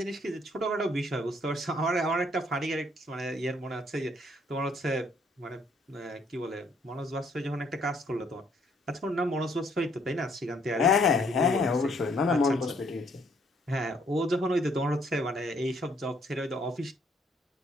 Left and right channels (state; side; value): normal; both; correlation 0.66